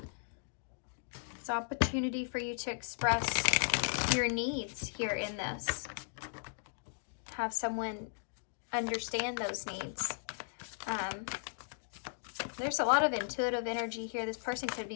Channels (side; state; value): right; silent; digital silence